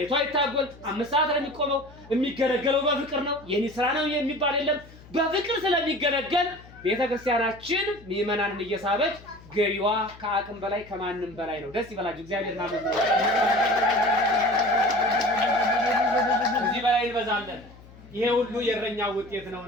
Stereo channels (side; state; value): left; noise; hum, 21 dB below the sound